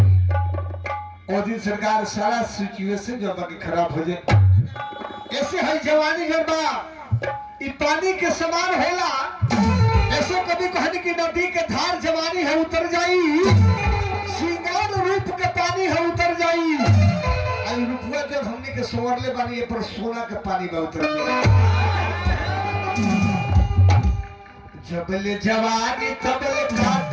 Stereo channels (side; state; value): both; identical; correlation 1.00